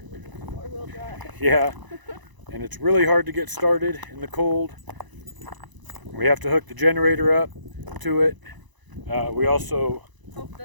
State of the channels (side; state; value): left; late; 1.0 ms